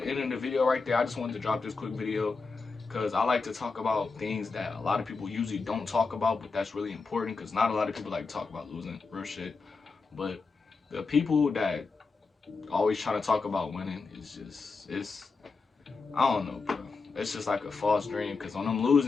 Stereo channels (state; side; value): quieter; right; 4.4 dB